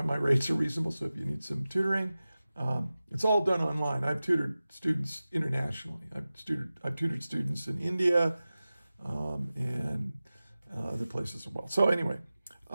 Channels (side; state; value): both; inverted; correlation -0.96